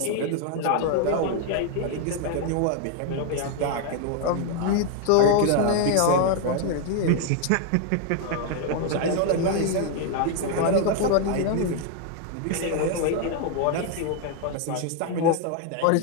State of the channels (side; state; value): both; different; correlation 0.00